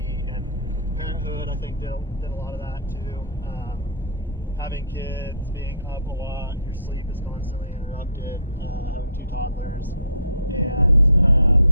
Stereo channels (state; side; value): inverted; both; correlation -0.49